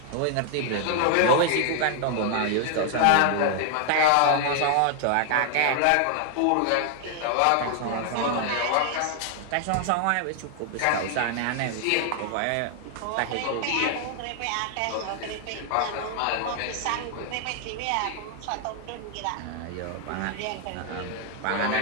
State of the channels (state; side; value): different; both; correlation 0.00